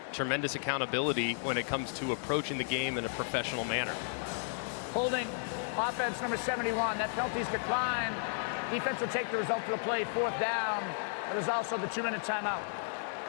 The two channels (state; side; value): silent; right; 55 dB below the other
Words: tremendous accountability when it comes to approaching the game in a professional manner. Holding offense number 71. That penalty's declined. Defense will take the result of the play, 4th down. There's also the 2-minute timeout.